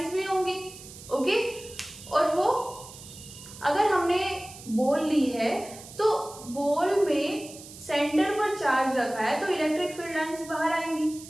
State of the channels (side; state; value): right; noise; hiss, 16 dB below the sound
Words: भी होंगी, ओके, और वो अगर हमने बॉल ली है तो बॉल में सेंटर पर चार्ज रखा है तो इलेक्ट्रिक फील्ड लाइंस बाहर आएंगी,